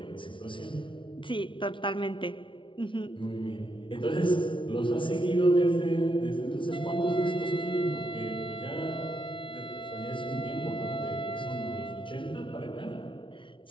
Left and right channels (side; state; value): right; late; 0.25 ms